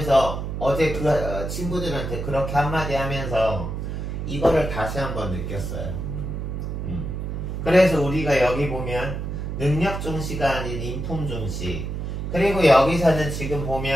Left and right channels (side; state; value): right; noise; hum, 4 dB below the sound